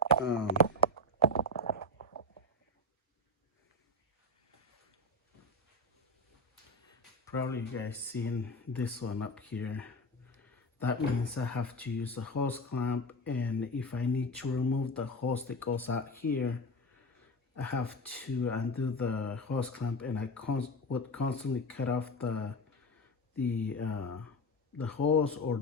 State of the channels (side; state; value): both; normal; correlation 0.20